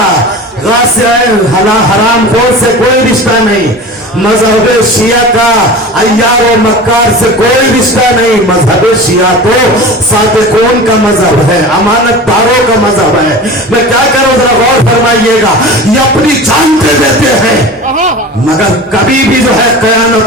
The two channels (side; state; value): both; normal; correlation 0.34